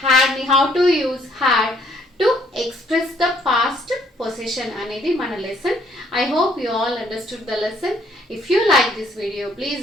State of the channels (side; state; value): both; normal; correlation 0.65